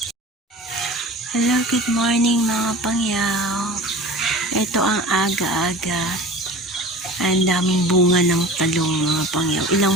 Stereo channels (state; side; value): normal; both; correlation 0.38